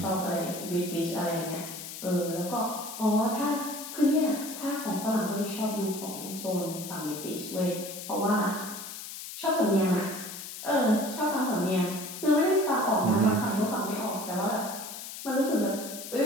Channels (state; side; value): noise; left; hiss, 10 dB below the sound